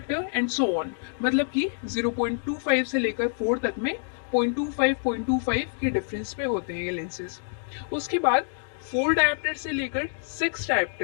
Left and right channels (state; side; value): silent; right; digital silence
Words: एंड सो ऑन। मतलब कि 0.25 से लेकर 4 तक में 0.25 के डिफरेंस पे होते हैं ये लेंसेज। उसके बाद 4 डायोप्टर से लेकर 6